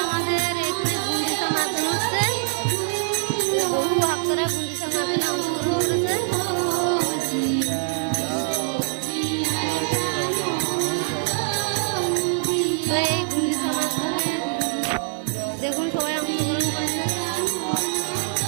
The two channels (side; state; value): left; silent; 63 dB below the other